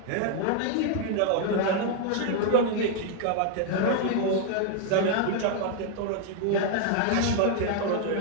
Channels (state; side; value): different; both; correlation 0.00